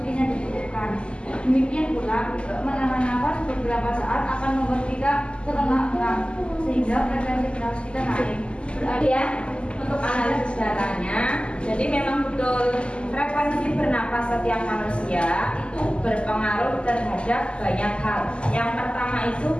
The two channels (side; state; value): right; late; 0.052 ms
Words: yang dibutuhkan. Demikian pula, menahan nafas beberapa saat akan membuat kita terengah-engah, sehingga frekuensi bernafas kita naik. Berarti ya, untuk analisis datanya, jadi memang betul frekuensi bernapas setiap manusia itu berpengaruh terhadap banyak hal. Yang pertama itu